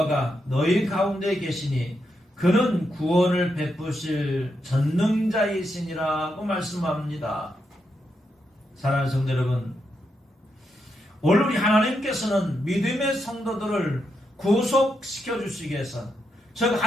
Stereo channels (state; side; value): normal; both; correlation 0.83